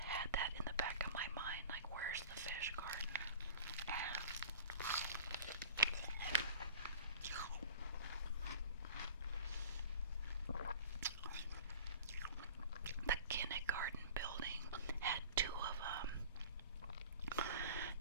had that in the back of my mind, like, where's the fish garden? And the kindergarten building had 2 of them.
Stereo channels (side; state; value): both; inverted; correlation -0.41